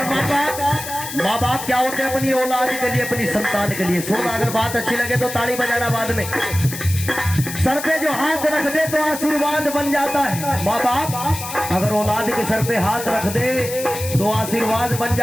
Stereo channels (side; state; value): left; noise; hiss, 9 dB below the sound